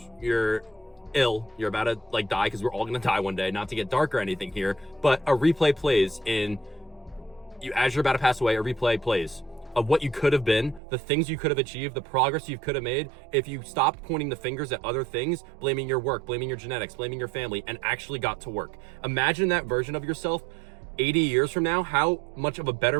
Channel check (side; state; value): left; drops out; at 10.8 s